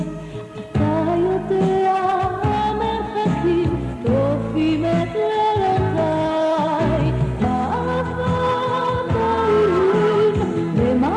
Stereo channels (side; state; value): both; identical; correlation 1.00